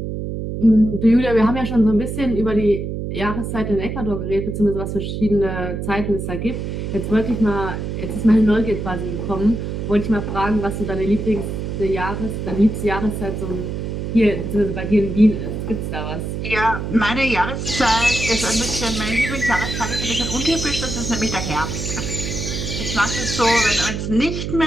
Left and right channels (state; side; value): noise; right; hum, 4 dB below the sound